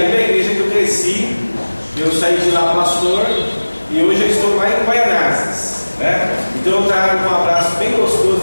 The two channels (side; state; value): both; inverted; correlation -1.00